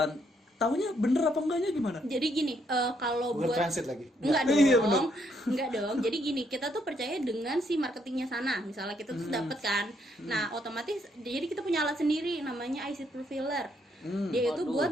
Taunya bener apa enggaknya gimana? Jadi gini, kalau Google buat Translate lagi. enggak Iya, bener. dong, enggak dong. Jadi gini, kita tuh percaya dengan si marketingnya sana. Misalnya kita tuh dapet kan, nah otomatis jadi kita punya alat sendiri namanya IC Profiler. Dia itu waduh. buat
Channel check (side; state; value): both; normal; correlation 0.73